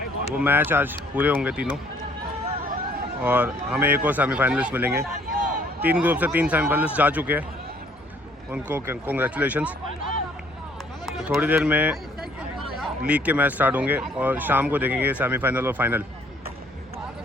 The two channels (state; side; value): normal; both; correlation 0.61